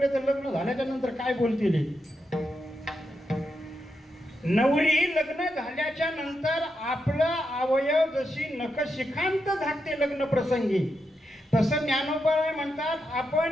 तर लग्न झाल्याच्या नंतर काय बोलतील? नवरी लग्न झाल्याच्या नंतर आपलं अवयव जशी नखशिखांत झाकते लग्न प्रसंगी, तसं ज्ञानोबराय म्हणतात,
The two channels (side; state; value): both; normal; correlation 0.85